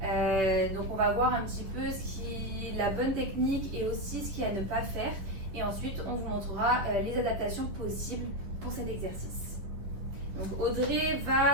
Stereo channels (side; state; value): left; late; 10 ms